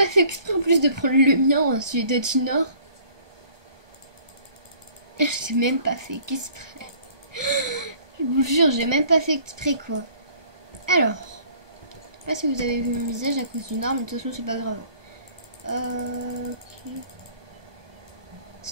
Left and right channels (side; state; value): left; late; 1.2 ms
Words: fait exprès en plus de prendre le mien, celui de Junior. J'ai même pas fait exprès. Je vous jure, j'ai même pas fait exprès quoi. Alors, je sais pas si vous avez vu mon visage à cause d'une arme, mais de toute façon c'est pas grave. Ok.